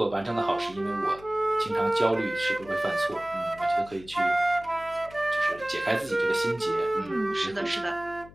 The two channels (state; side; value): noise; left; hum, 21 dB below the sound